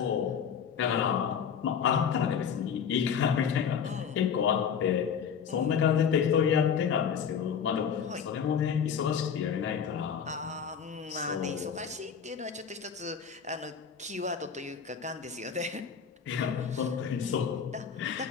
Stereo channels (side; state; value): right; quieter; 7.3 dB